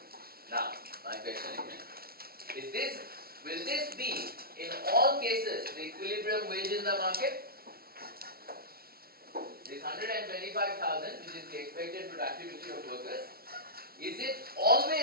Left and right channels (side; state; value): left; late; 0.44 ms